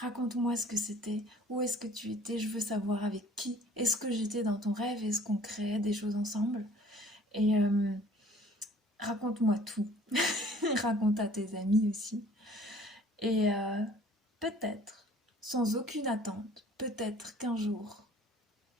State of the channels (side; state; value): both; normal; correlation 0.52